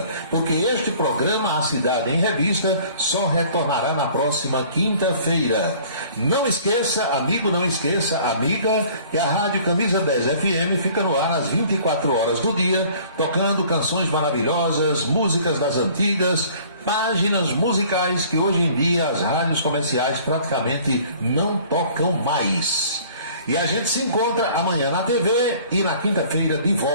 porque este programa, A Cidade em Revista, só retornará na próxima quinta-feira. Não esqueça, amigo, não esqueça, amiga, que a Rádio Camisa 10 FM fica no ar às 24 horas do dia, tocando canções maravilhosas, músicas das antigas, páginas musicais que hoje em dia as rádios comerciais praticamente não tocam mais. E a gente se encontra amanhã na TV e na quinta-feira de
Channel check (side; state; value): both; inverted; correlation -0.52